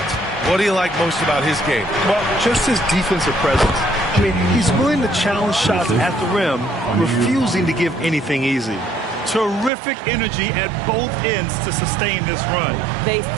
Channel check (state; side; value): drops out; left; at 9.7 s